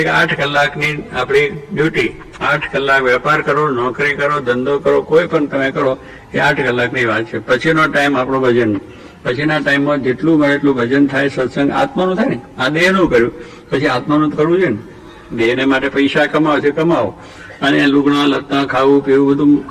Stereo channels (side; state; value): both; identical; correlation 1.00